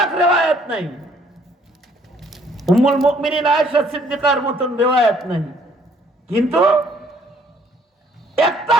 রিওয়ায়াত নাই, উম্মুল মুমিনিন আয়েশা সিদ্দিকার মতন রিওয়ায়াত নাই, কিন্তু একটা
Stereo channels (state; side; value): normal; both; correlation 0.62